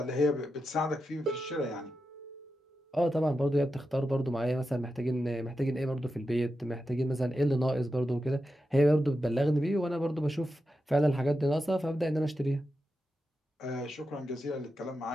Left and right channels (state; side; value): normal; both; correlation 0.89